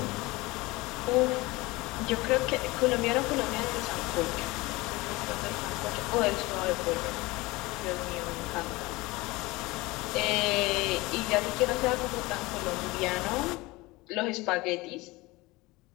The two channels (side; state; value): right; quieter; 21.9 dB